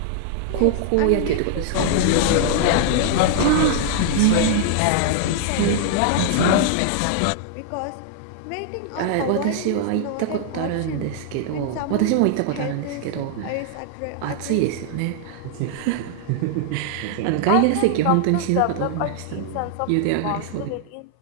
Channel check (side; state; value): both; different; correlation -0.01